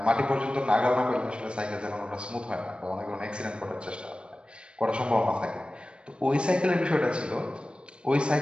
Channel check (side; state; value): left; late; 0.055 ms